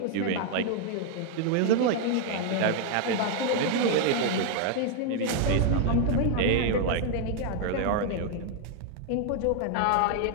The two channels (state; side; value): different; both; correlation 0.00